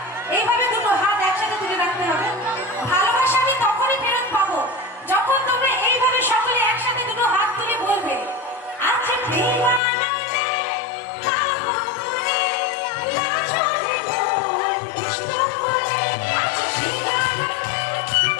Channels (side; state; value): right; drops out; at 9.8 s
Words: এইভাবে দুটো হাত একসাথে তুলে রাখতে হবে। ভালোবাসা আমি তখনই ফেরত পাবো যখন তোমরা এইভাবে সকলে একসাথে দুটো হাত তুলে বলবে, আচ্ছা প্রেমানন্দে গাবো তুলে নাচরে মোর কৃষ্ণ বলে, আচ্ছা প্রেমানন্দে